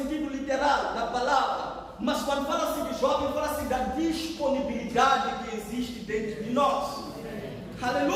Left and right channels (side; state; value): both; identical; correlation 1.00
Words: literal da palavra. Mas quando fala-se de jovem, fala-se da disponibilidade que existe dentro de nós.